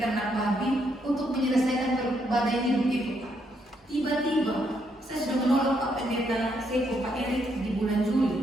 babi untuk menyelesaikan badai hidup itu, Pak. Tiba-tiba saya sudah menolak Pak Pendeta Seko, Pak Erik di bulan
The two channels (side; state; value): both; normal; correlation 0.75